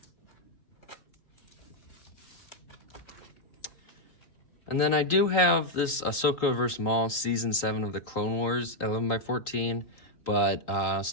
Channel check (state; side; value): late; right; 3.8 ms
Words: And then I do have this Ahsoka vs. Maul Season 7 of the Clone Wars 11x14, but